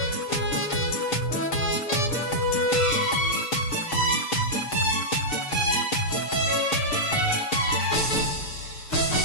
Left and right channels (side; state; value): right; late; 6.7 ms